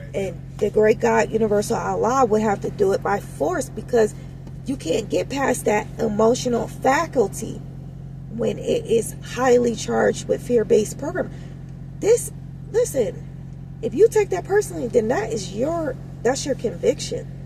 now. And the great God, Universal Allah, would have to do it by force, because you can't get past that emotional faculty when it is highly charged with fear-based program. Listen, if you take that personally, then that's your conviction,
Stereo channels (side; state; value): both; identical; correlation 1.00